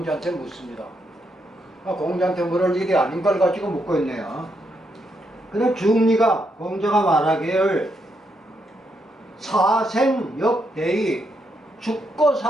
묻습니다. 공자한테 물을 일이 아닌 걸 가지고 묻고 있네요. 그럼 중리가 공자가 말하기를 사생역대의 죽고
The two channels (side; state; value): both; normal; correlation 0.79